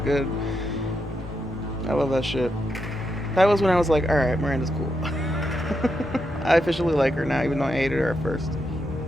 I love that shit. That was when I was like, alright, Miranda's cool. I officially like her now, even though I hated her at first.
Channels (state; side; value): normal; both; correlation 0.83